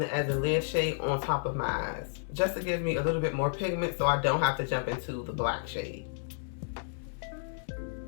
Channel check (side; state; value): right; silent; digital silence